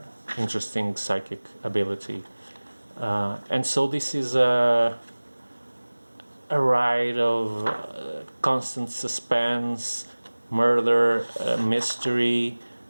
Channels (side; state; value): both; inverted; correlation -1.00